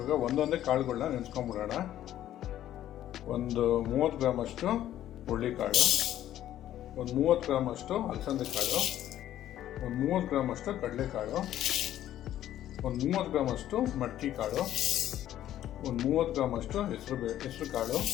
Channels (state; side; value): quieter; right; 12.3 dB